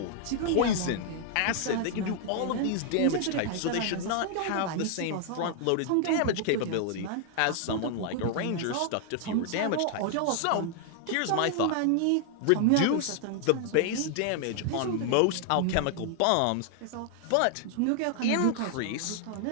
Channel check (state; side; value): different; both; correlation 0.00